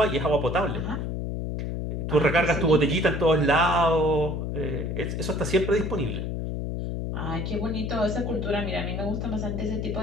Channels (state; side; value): noise; left; hum, 3 dB below the sound